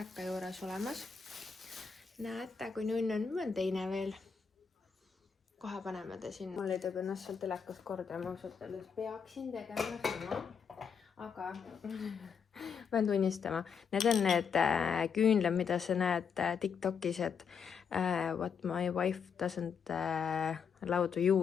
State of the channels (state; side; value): quieter; right; 6.5 dB